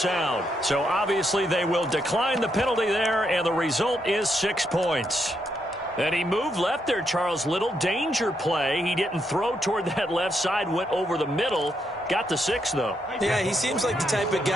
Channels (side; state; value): both; normal; correlation 0.79